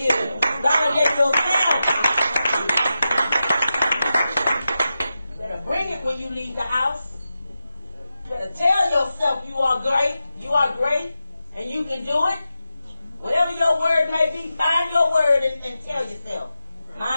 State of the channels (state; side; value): inverted; both; correlation -0.91